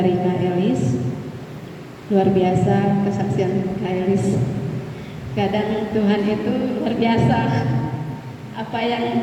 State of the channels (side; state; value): both; identical; correlation 1.00